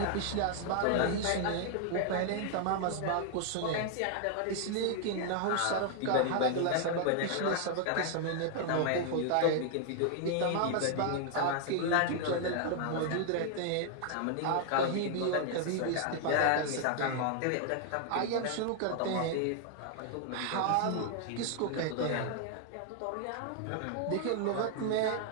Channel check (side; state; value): both; different; correlation 0.00